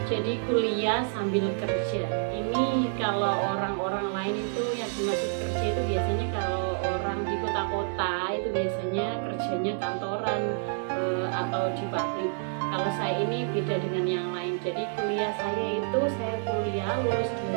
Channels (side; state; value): left; silent; 59 dB below the other